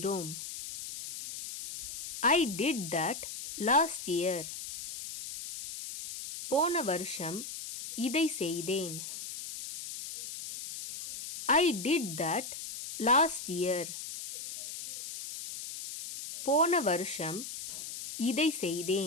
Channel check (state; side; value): noise; left; hiss, 8 dB below the sound